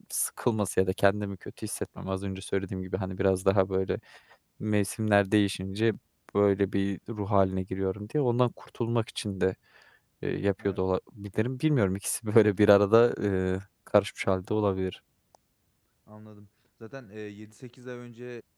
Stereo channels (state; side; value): identical; both; correlation 1.00